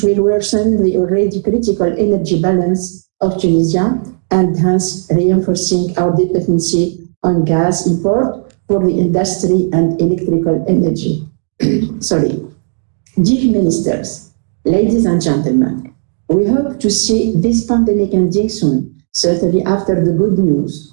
will worsen the already critical energy balance of Tunisia and hence reinforcing our dependency on gas import for the industry and electrical energy. Dear Ministers, ladies and gentlemen, we hope to see this pandemic ending soon, certainly after the good news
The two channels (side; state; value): left; silent; digital silence